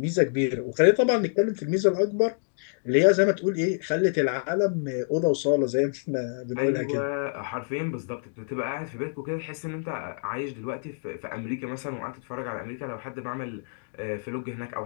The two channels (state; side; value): silent; right; digital silence